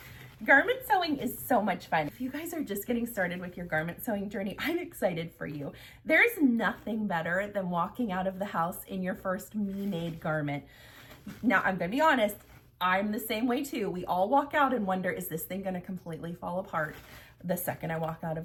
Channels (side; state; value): both; identical; correlation 1.00